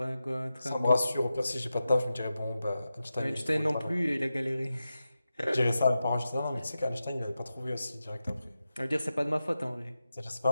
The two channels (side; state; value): both; inverted; correlation -0.92